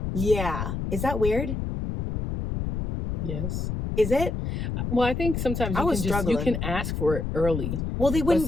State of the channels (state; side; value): noise; left; rumble, 3 dB below the sound